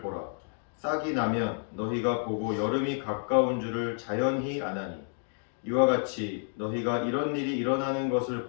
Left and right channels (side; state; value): right; silent; 58 dB below the other